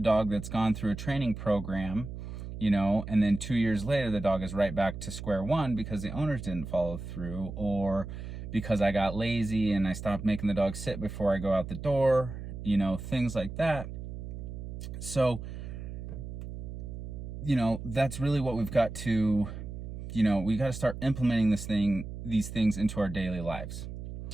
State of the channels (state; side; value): noise; right; hum, 9 dB below the sound